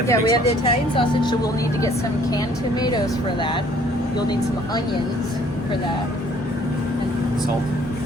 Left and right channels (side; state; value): both; normal; correlation 0.59